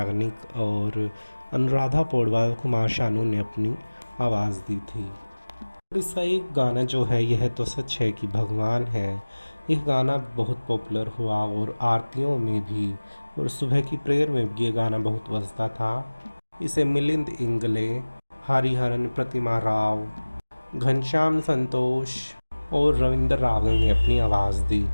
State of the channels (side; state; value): both; inverted; correlation -1.00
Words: और अनुराधा पौडवाल, कुमार शानू ने अपनी आवाज़ दी थी। इसका एक गाना जो है यह तो सच है कि भगवान है, यह गाना बहुत पॉपुलर हुआ और आरतियों में भी और सुबह की प्रेयर में भी ये गाना बहुत बजता था। इसे मिलिंद इंगले, हरिहरन प्रतिमा राव, घनश्याम संतोष और रविंद्र रावल ने अपनी आवाज़ दी।